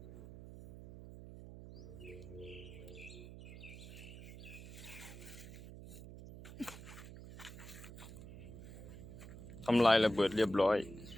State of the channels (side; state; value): right; noise; hum, 13 dB below the sound